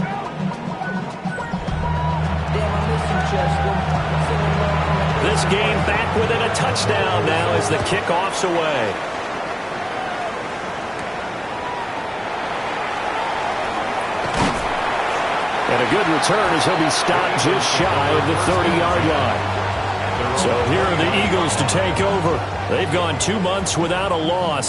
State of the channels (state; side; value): identical; both; correlation 1.00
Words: This game back within a touchdown now as the kickoff's away. And a good return as he'll be stopped just shy of the 30-yard line. So here are the Eagles to take over. They've gone 2 months without a